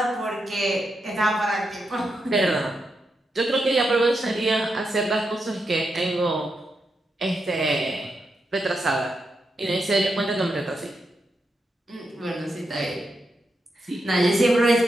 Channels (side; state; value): both; normal; correlation 0.85